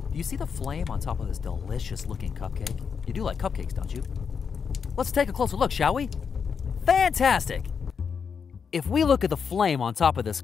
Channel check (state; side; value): quieter; right; 6.3 dB